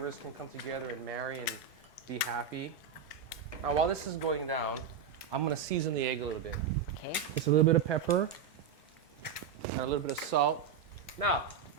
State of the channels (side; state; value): left; quieter; 6.9 dB